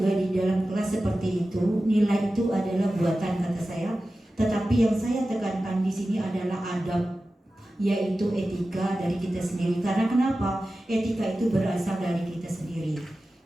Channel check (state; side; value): normal; both; correlation 0.94